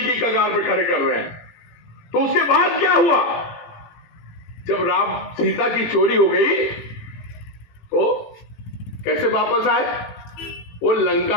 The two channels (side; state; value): right; late; 18 ms